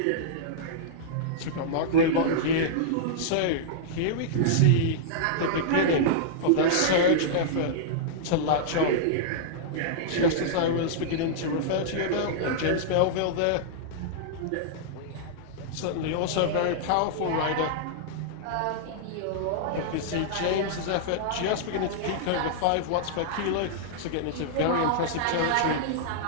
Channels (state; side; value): different; both; correlation -0.02